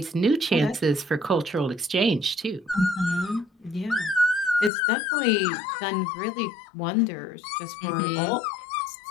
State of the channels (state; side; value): drops out; right; at 4.7 s